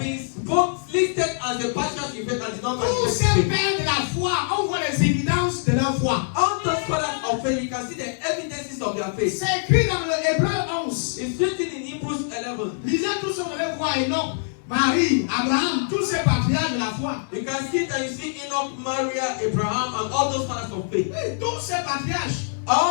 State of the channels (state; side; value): silent; right; digital silence